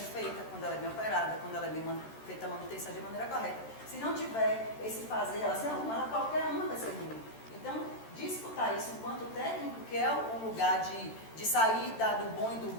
feita, quando ela é bem operada, quando ela é bem feita a manutenção de maneira correta. Se não tiver esse fazer, ela qualquer uma vai ser ruim. Então, disputar isso enquanto técnico, que é o lugar de sair do bom e do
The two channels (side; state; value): right; late; 13 ms